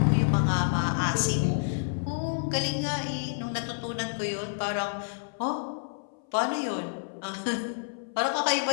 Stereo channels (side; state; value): right; silent; 59 dB below the other